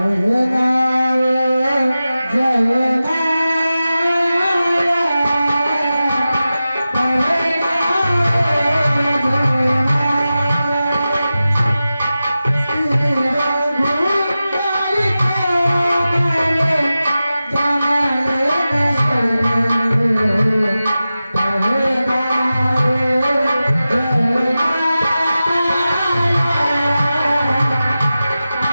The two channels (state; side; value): inverted; both; correlation -0.94